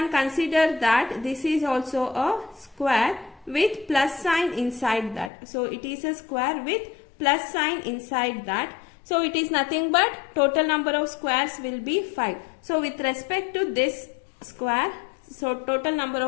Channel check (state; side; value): drops out; right; at 5.3 s